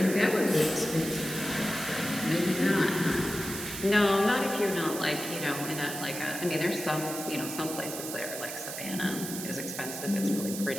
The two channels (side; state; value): right; noise; hiss, 7 dB below the sound